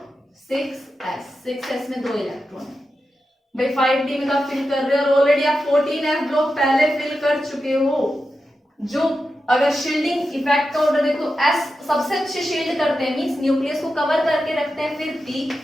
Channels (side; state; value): both; normal; correlation 0.90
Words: 6S में 2 इलेक्ट्रॉन है भाई। 5D में आप फिल कर रहे हो और ऑलरेडी आप 14F ब्लॉक पहले फिल कर चुके हो। जो अगर शील्डिंग इफेक्ट का ऑर्डर देखो, S सबसे अच्छे शील्ड करते हैं, मींस न्यूक्लियस को कवर करके रखते हैं, फिर P,